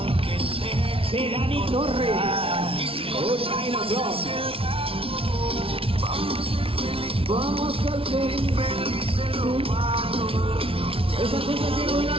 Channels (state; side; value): late; left; 0.26 ms